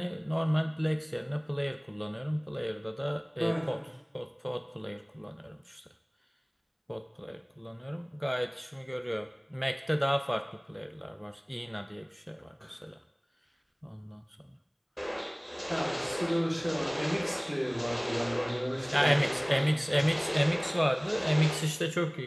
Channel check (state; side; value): identical; both; correlation 1.00